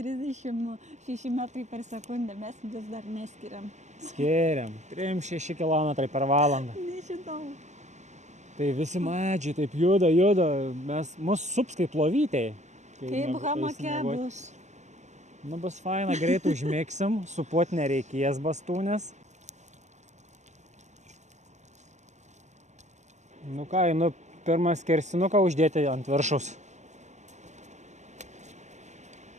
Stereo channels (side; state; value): left; late; 0.34 ms